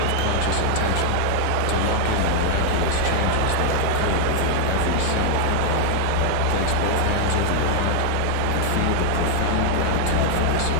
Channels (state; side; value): different; both; correlation 0.00